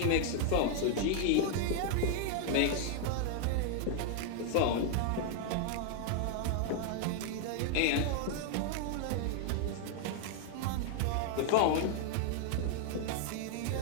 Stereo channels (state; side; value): different; both; correlation 0.00